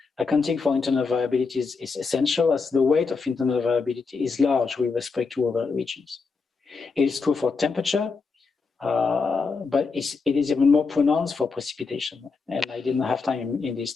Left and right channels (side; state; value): right; quieter; 4.7 dB